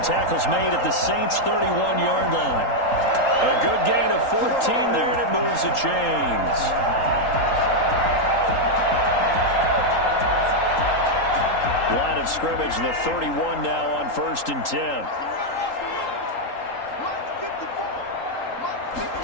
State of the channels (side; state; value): right; late; 3.8 ms